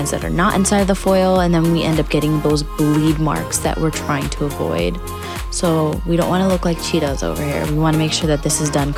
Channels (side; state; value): both; identical; correlation 1.00